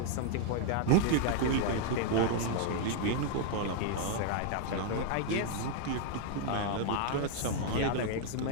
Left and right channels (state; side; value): different; both; correlation -0.01